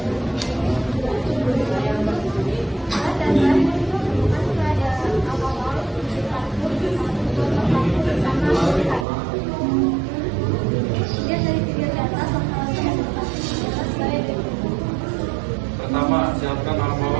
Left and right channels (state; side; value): drops out; left; at 9.1 s